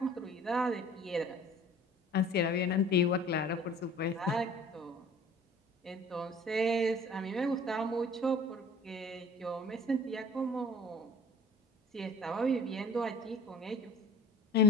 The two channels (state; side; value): normal; both; correlation 0.48